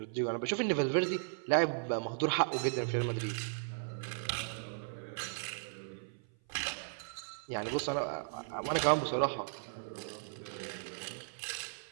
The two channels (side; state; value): left; silent; 54 dB below the other